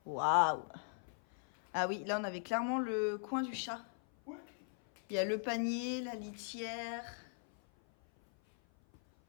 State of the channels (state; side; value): silent; right; 52 dB below the other